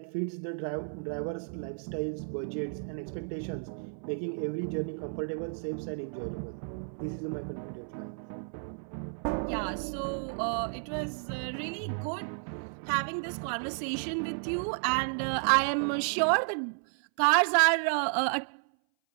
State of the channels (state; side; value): silent; left; 56 dB below the other